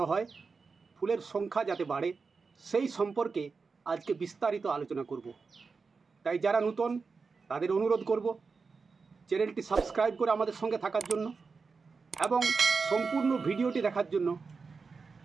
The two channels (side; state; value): left; quieter; 4.7 dB